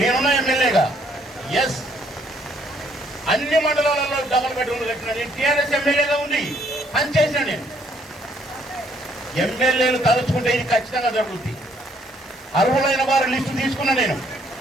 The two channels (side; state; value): both; normal; correlation 0.66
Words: ఎమ్మెల్యేగా ఎస్ అన్ని మండలాలలో డబల్ బెడ్రూమ్లు కట్టినా. నేను టీఆర్ఎస్ ఎమ్మెల్యేగా ఉంది పనిచేసిన. నేను ఎమ్మెల్యేలు తలుచుకుంటే ఇది ఖచ్చితంగా జరుగుతుంది. అర్హులైన వారి లిస్టు తీసుకున్నా. నేను